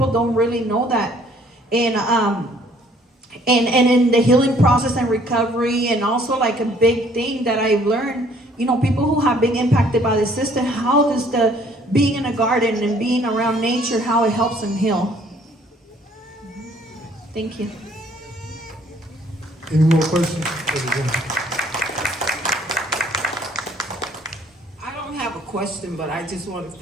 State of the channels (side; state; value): both; normal; correlation 0.60